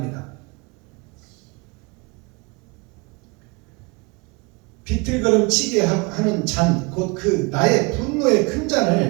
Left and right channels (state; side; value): quieter; left; 28.0 dB